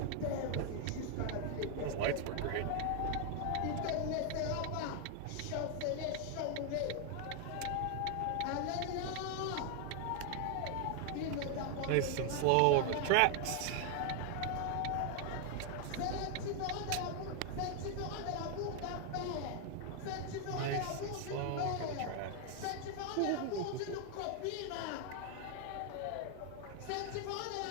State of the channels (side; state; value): both; different; correlation 0.00